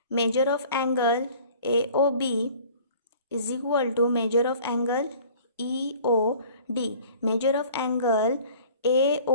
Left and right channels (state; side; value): inverted; both; correlation -0.49